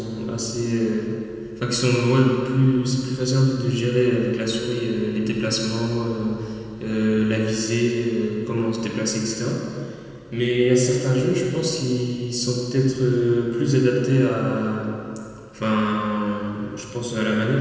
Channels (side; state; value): both; identical; correlation 1.00